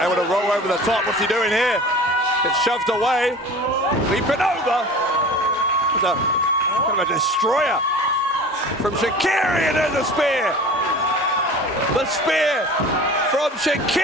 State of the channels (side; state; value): both; normal; correlation 0.39